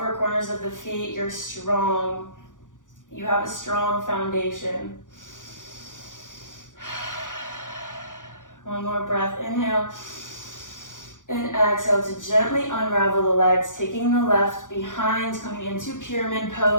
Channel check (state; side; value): late; right; 0.87 ms